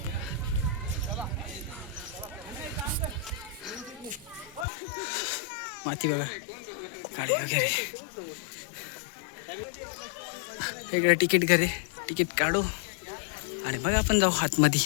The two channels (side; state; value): right; drops out; at 4.7 s